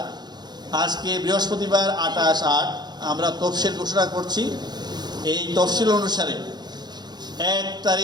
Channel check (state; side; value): late; left; 0.20 ms